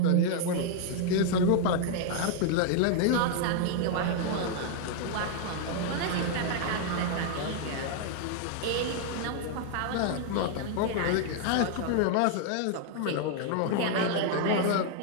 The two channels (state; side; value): different; both; correlation 0.00